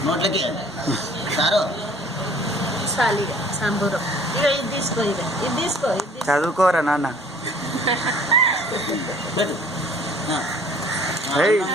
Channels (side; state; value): both; normal; correlation 0.52